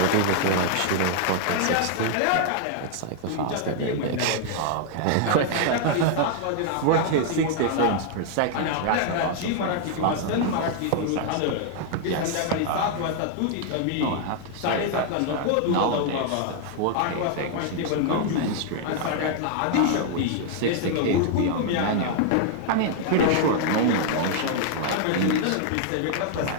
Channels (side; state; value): both; different; correlation 0.00